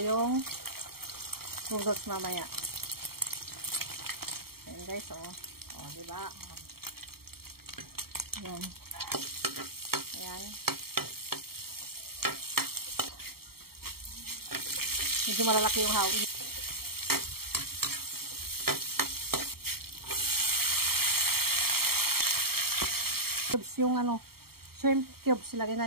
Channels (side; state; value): left; late; 0.94 ms